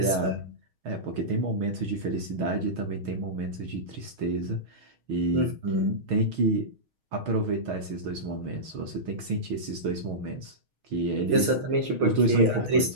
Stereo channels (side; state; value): left; late; 6.4 ms